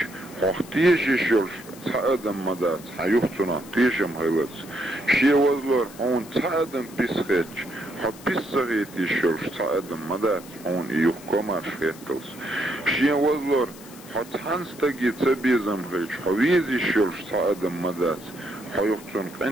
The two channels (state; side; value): noise; left; hiss, 20 dB below the sound